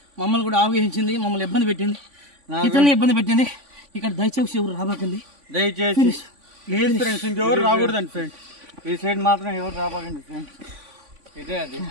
మమ్మల్ని కూడా ఆవగించింది మమ్మల్ని ఇబ్బంది పెట్టింది ఇతరులని ఇబ్బంది పెట్టింది ఇక్కడ దయచేసి ఎవరు రాబాకండి దయచేసి లేదు ఫ్రెండ్స్ ఇంకెవరు రాకూడదండి ఫ్రెండ్స్ ఈ సైడ్ మాత్రం ఎవరు రాబాకండి ఫ్రెండ్స్ ఇదే అది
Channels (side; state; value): left; late; 3.5 ms